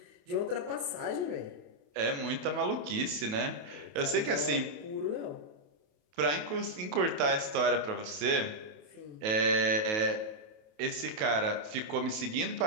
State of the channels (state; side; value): late; left; 28 ms